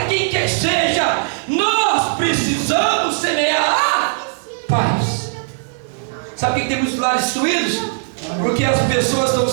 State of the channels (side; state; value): left; silent; digital silence